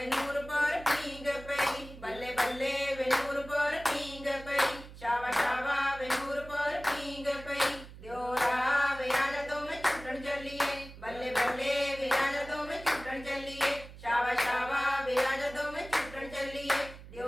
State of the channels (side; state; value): right; noise; hum, 16 dB below the sound